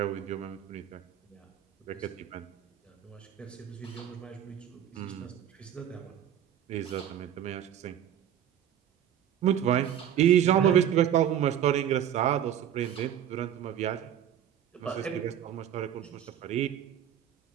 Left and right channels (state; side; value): quieter; left; 10.2 dB